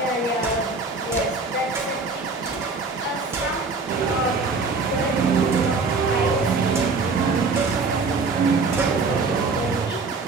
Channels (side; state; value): left; quieter; 4.1 dB